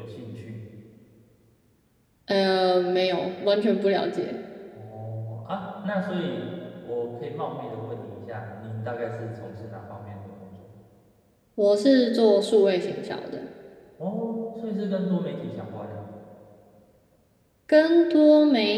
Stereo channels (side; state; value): both; identical; correlation 1.00